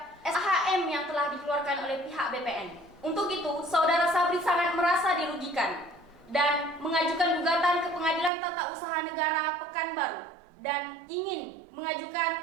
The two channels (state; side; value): drops out; left; at 8.3 s